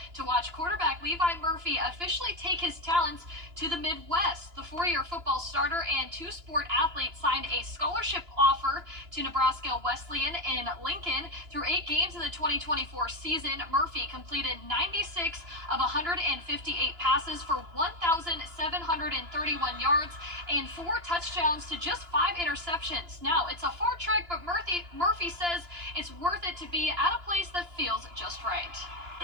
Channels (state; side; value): late; left; 2.9 ms